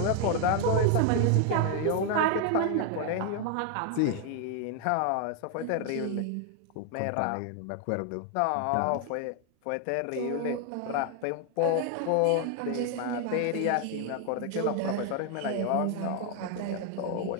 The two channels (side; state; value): both; different; correlation 0.00